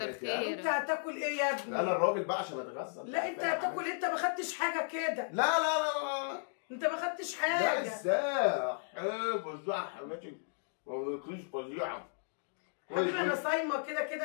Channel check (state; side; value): silent; right; digital silence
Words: خيرك. انت هتاكل ايه يا ابني؟ انا الراجل بقى عشان اتغذى. لا انت هتاكل، انت ما خدتش حاجه كده. لا لا لا لا لا انت ما خدتش حاجه. لا ازاي؟ فظيعه حماتي، ما بتاكليش فظيعه. حبيبي انا صايمه كده